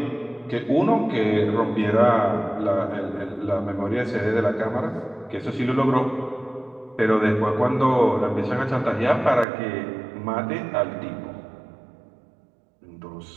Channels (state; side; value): drops out; left; at 9.5 s